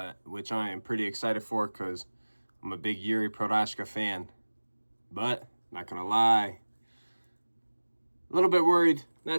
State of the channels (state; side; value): inverted; both; correlation -1.00